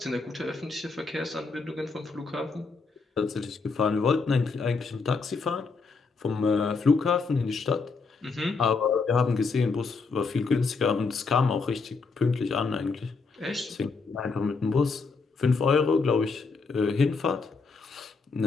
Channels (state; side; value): quieter; right; 4.5 dB